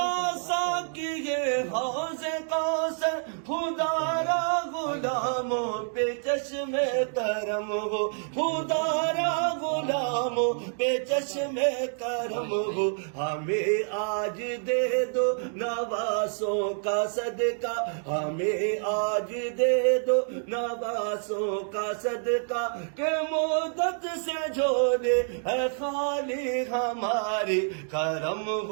سا کیے حوض کوثر خدا را غلاموں پہ چشم کرم ہو خدا را غلاموں پہ چشم کرم ہو ہمیں آج دے دو نواسوں کا صدقہ ہمیں آج دے دو نواسوں کا صدقہ کہ مدت سے جھولے ہے خالی ہماری کرم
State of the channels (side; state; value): left; silent; digital silence